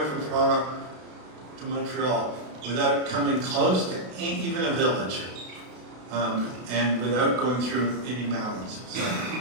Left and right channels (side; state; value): left; late; 32 ms